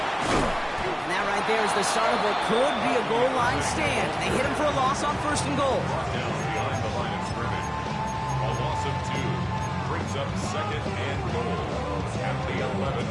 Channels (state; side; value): identical; both; correlation 1.00